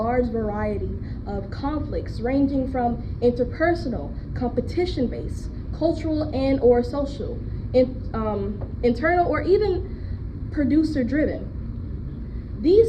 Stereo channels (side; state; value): both; identical; correlation 1.00